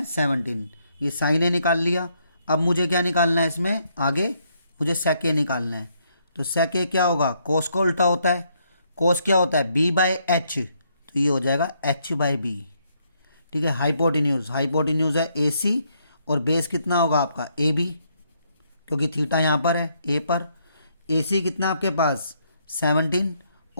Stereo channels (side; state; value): both; inverted; correlation -0.73